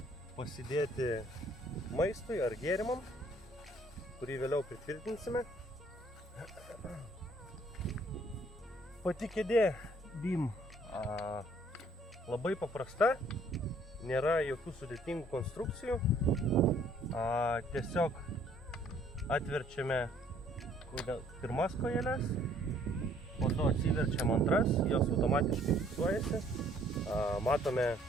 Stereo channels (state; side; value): normal; both; correlation 0.61